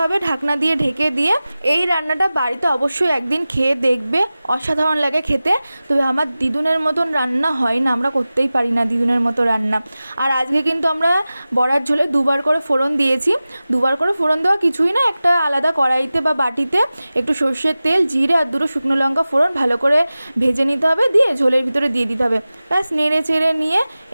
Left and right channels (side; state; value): both; inverted; correlation -0.96